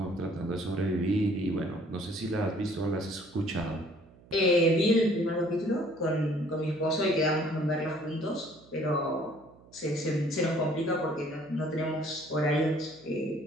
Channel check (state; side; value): noise; right; hum, 25 dB below the sound